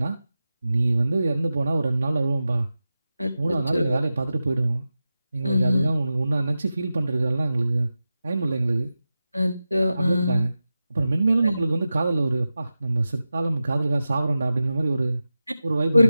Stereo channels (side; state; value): both; inverted; correlation -0.93